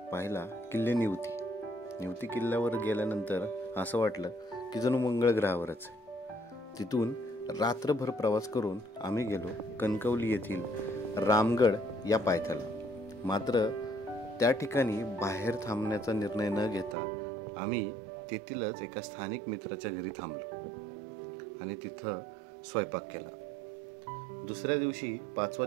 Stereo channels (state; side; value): drops out; left; at 16.9 s